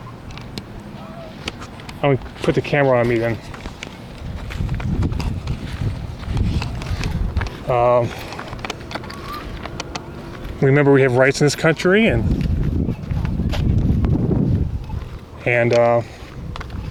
I'm going to put the camera on me then. Remember, we have rights in this country, and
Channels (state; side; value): identical; both; correlation 1.00